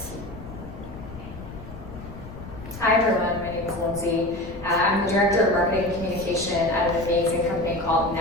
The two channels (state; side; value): noise; left; rumble, 13 dB below the sound